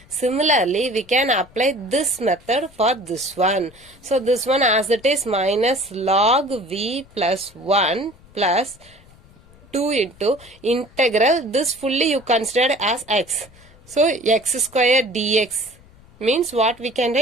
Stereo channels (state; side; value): noise; left; rumble, 26 dB below the sound